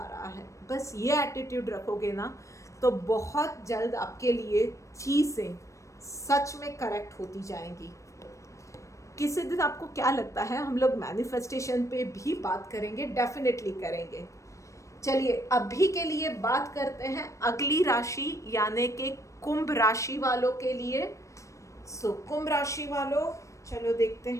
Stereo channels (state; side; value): late; right; 0.15 ms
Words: रहा है। बस ये एटीट्यूड रखोगे ना तो बहुत जल्द आपके लिए चीज़ें सच में करेक्ट होती जाएंगी। किसी दिन आपको क्या लगता है हम लोग मैनिफेस्टेशन पे भी बात करेंगे, डेफिनेटली करेंगे। चलिए अभी के लिए बात करते हैं अगली राशि यानी कि कुंभ राशि वालों के लिए। सो कुंभ राशि वालों, चलो देखते